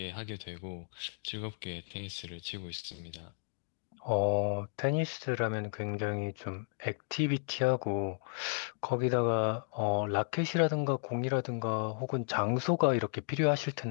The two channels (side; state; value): right; silent; digital silence